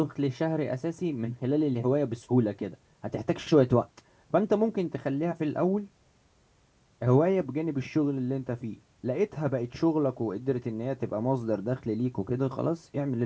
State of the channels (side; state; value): both; identical; correlation 1.00